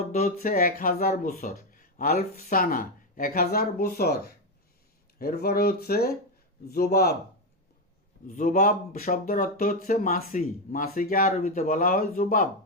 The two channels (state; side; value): normal; both; correlation 0.08